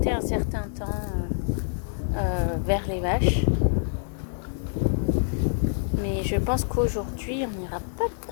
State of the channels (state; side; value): silent; right; digital silence